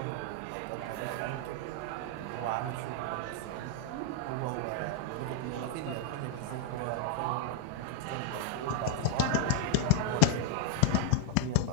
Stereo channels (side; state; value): both; different; correlation 0.00